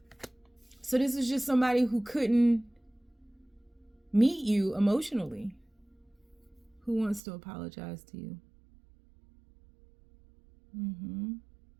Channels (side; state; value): left; drops out; at 7.2 s